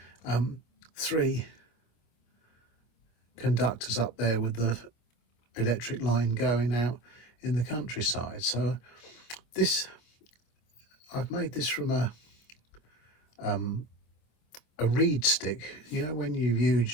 3 conductors up there with the electric line going out in the countryside. So I've made this from a reed stick. When you've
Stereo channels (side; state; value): right; late; 26 ms